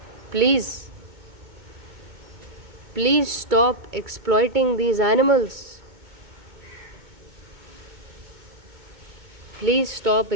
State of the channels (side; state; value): left; late; 2.2 ms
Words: Please stop exploiting these animals. Please stop